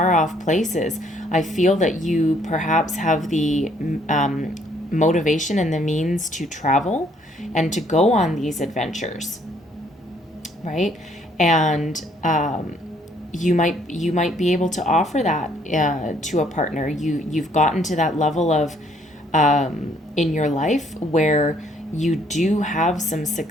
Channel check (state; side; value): normal; both; correlation 0.65